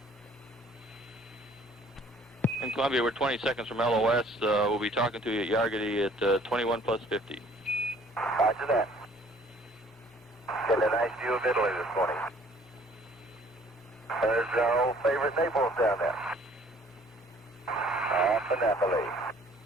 In Columbia, we're 20 seconds from LOS. We'll be talking to you at Yargity at 21 plus 50. Roger that. Getting a nice view of Italy this morning. There's our old favorite Naples down there. Off of Napoli.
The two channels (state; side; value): normal; both; correlation 0.56